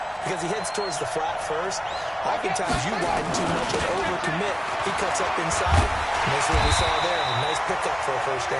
because he heads towards the flat first, oftentimes you widen too much and overcommit. He cuts up inside, and that's what we saw there. A nice pickup for a first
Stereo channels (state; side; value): identical; both; correlation 1.00